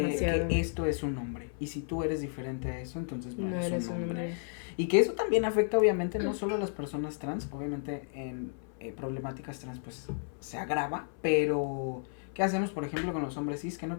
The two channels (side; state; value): right; silent; 56 dB below the other